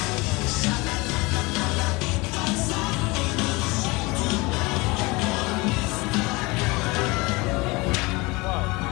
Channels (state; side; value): quieter; right; 24.4 dB